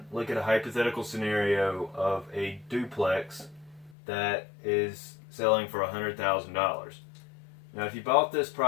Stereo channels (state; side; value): drops out; right; at 4.0 s